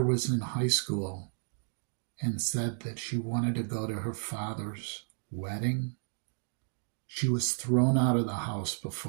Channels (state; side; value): silent; left; digital silence